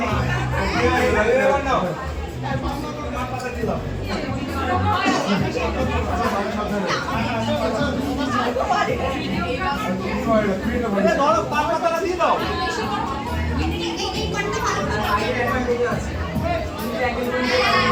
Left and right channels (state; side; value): identical; both; correlation 1.00